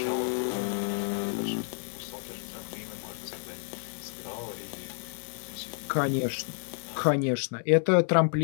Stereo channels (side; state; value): right; silent; digital silence